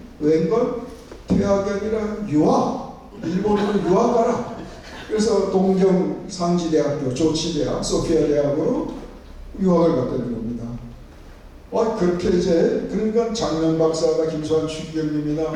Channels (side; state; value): both; identical; correlation 1.00